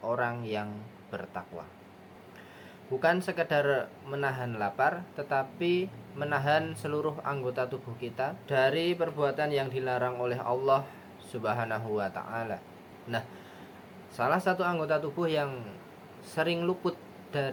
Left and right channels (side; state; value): both; identical; correlation 1.00